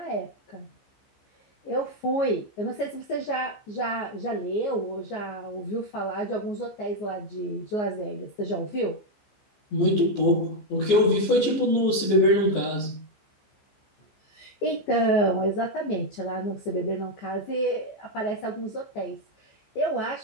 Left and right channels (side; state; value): right; late; 14 ms